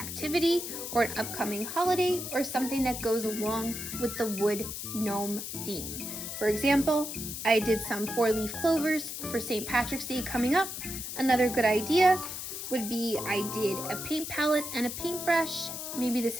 or an upcoming holiday or something that goes along with the wood gnome theme. For example, I did some 4-leaf clovers for St. Patrick's Day coming up. Another good idea would be I did a paint palette and a paintbrush. Maybe this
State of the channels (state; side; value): noise; left; hiss, 7 dB below the sound